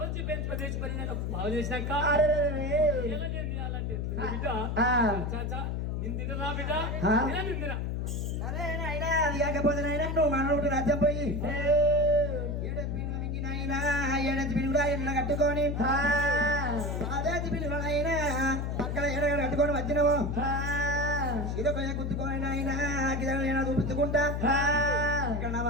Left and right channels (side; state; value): left; noise; hum, 1 dB below the sound